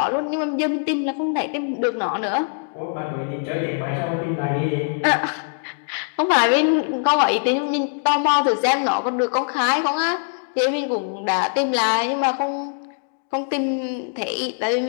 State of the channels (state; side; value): silent; right; digital silence